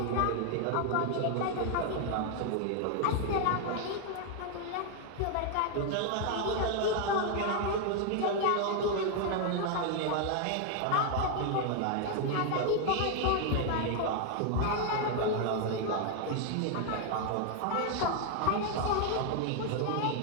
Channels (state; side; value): different; both; correlation 0.00